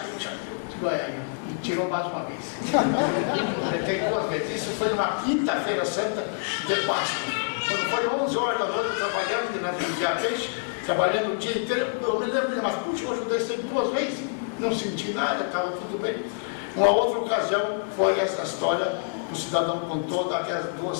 e tirou mais uma vez. Tem 2 vezes. Isso foi uma quinta-feira santa de Páscoa. Quando foi 11 horas da noite trabalhando, né, no dia peixe, trabalhando o dia inteiro, eu me lembro, mas puxa, hoje eu dei sempre 2 vezes, não senti nada, estava tudo bem. Uma outra ocasião foi essa história, o cidadão contou daqueles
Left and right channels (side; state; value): right; silent; digital silence